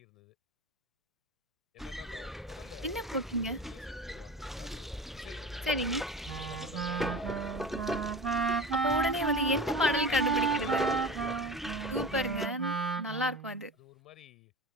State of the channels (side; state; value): both; normal; correlation 0.33